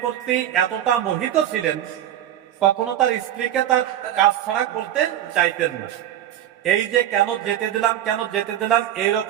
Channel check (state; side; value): quieter; left; 11.6 dB